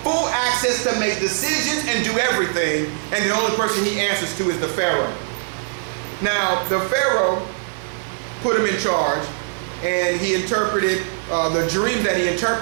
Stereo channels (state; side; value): silent; left; digital silence